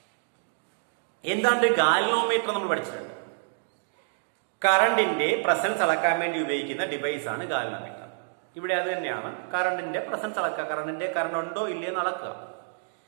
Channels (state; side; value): silent; left; digital silence